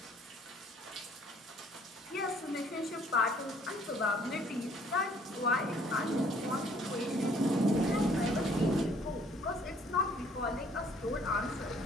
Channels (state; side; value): normal; both; correlation 0.60